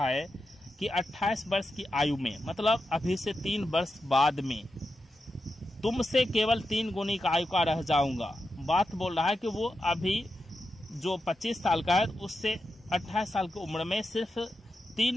है कि 28 वर्ष की आयु में, मतलब अभी से 3 वर्ष बाद में तुमसे केवल 3 गुनी का आयु का रह जाऊंगा। बात बोल रहा है कि वो अभी जो 25 साल का है उससे 28 साल की उम्र में सिर्फ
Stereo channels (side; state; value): both; normal; correlation 0.88